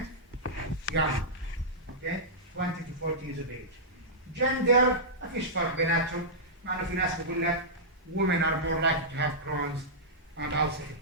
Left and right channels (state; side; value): normal; both; correlation -0.13